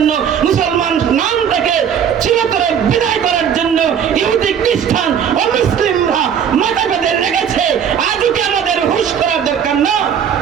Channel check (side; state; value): left; quieter; 8.2 dB